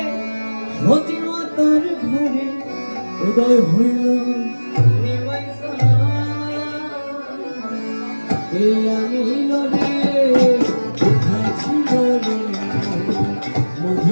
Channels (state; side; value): inverted; both; correlation -1.00